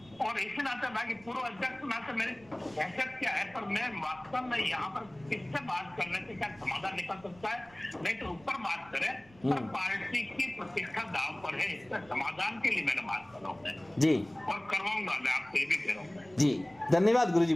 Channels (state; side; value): noise; right; rumble, 26 dB below the sound